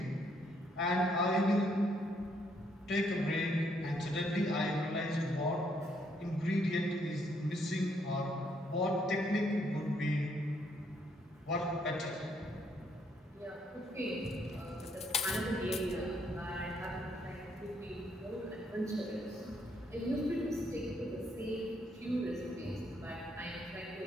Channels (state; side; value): normal; both; correlation 0.71